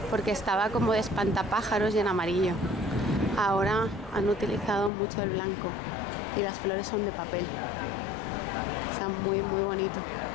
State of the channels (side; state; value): right; drops out; at 4.9 s